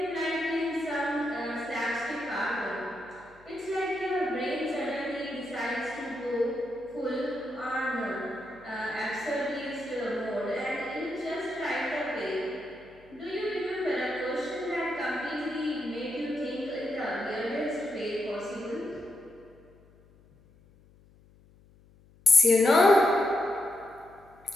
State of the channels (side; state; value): left; noise; hum, 27 dB below the sound